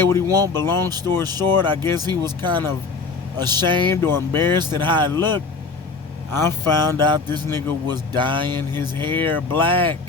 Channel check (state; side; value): quieter; right; 4.3 dB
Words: what he want, but long story short, I guess he was kind of ashamed or embarrassed at how it looked. I found out this nigga was dyeing his hair black.